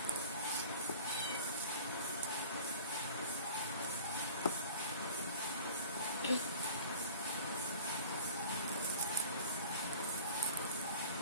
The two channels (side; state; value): both; inverted; correlation -0.43